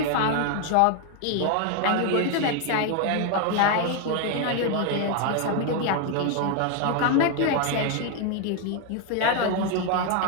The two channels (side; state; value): both; different; correlation 0.01